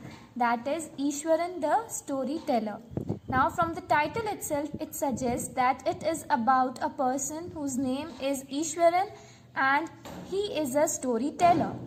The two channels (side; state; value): both; identical; correlation 1.00